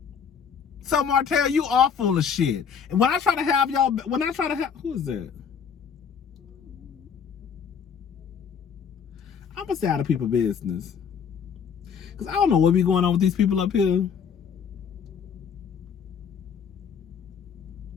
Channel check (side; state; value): right; quieter; 6.9 dB